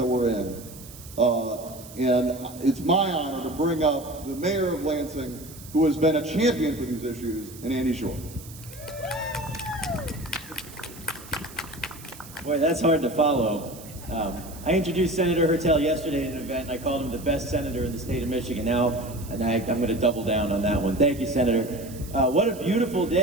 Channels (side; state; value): right; noise; hiss, 17 dB below the sound